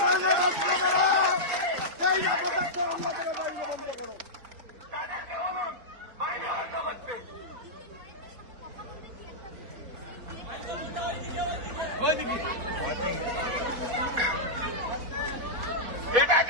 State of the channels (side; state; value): left; late; 4.1 ms